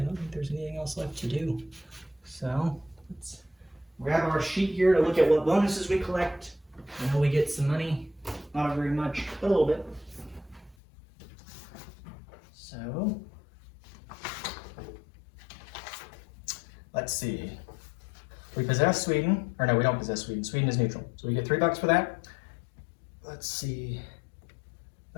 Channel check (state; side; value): drops out; right; at 10.8 s